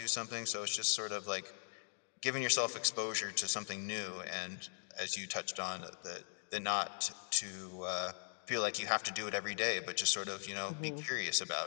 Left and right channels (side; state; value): right; silent; digital silence